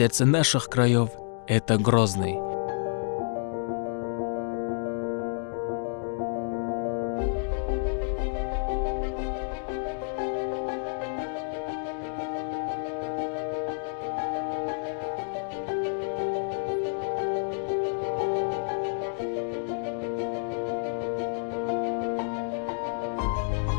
наших краев, это Грозный.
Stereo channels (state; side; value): silent; right; digital silence